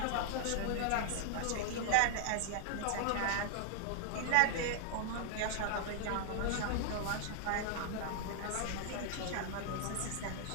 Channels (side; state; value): both; different; correlation 0.00